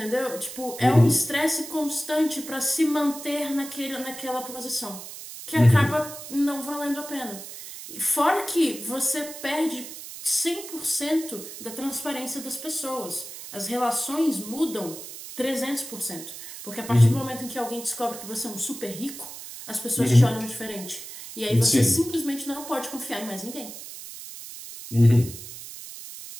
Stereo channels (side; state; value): right; noise; hiss, 12 dB below the sound